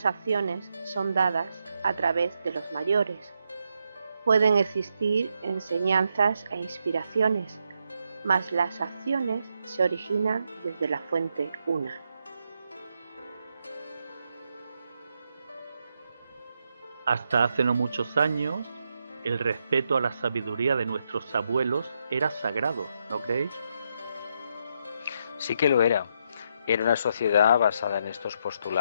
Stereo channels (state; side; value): inverted; both; correlation -0.80